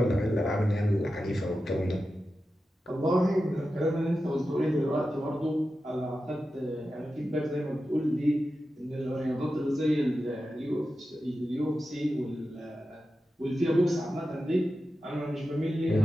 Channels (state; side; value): normal; both; correlation 0.92